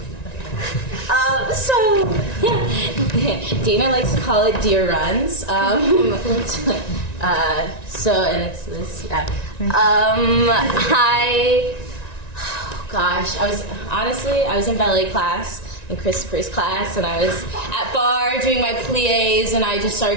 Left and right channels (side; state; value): right; late; 1.9 ms